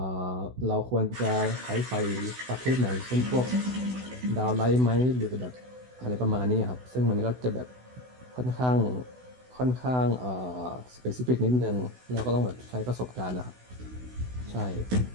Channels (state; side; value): late; left; 16 ms